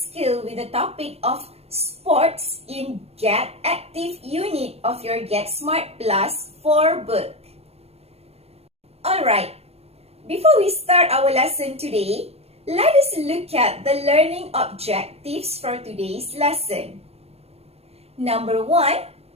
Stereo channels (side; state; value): left; late; 0.29 ms